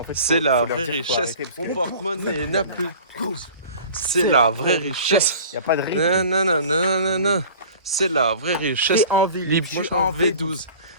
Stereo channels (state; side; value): inverted; both; correlation -0.43